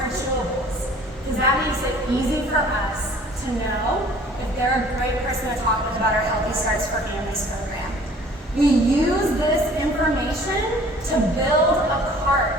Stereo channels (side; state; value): both; normal; correlation 0.52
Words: chewables, because that makes it easy for us to know if they're a great person to talk with about our Healthy Starts for Families program. We use this information to build a